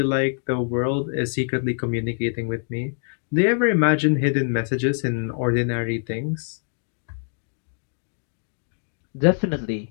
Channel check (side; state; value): right; silent; 62 dB below the other